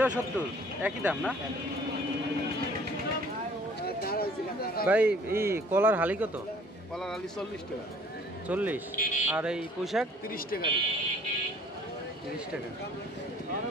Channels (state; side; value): normal; both; correlation 0.55